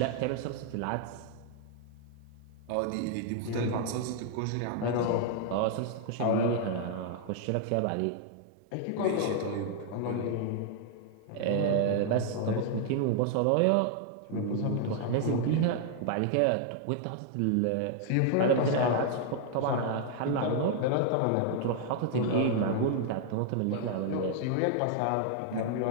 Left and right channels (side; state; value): both; different; correlation 0.00